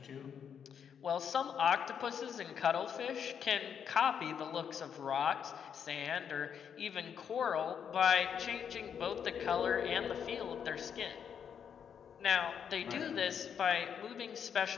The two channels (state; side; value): quieter; right; 7.8 dB